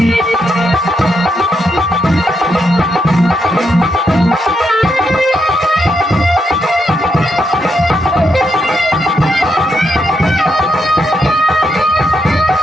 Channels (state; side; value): normal; both; correlation 0.81